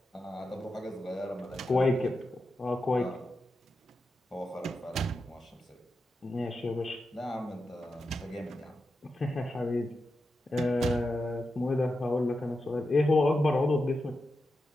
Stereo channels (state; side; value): normal; both; correlation 0.89